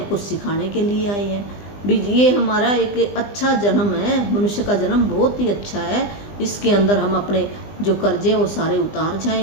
कुछ सिखाने के लिए आए हैं भी। ये हमारा एक अच्छा जन्म है, मनुष्य का जन्म बहुत ही अच्छा है। इसके अंदर हम अपने जो कर्जे वो सारे उतार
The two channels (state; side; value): late; right; 20 ms